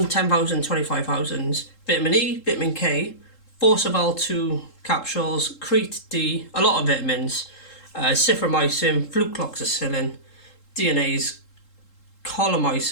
10,000, 25,000, vitamin E, vitamin K, Forceval 2 capsules, Crete D, a lot of vitamins, ciframycin, flucloxacillin, DNAs,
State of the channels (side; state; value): right; late; 3.7 ms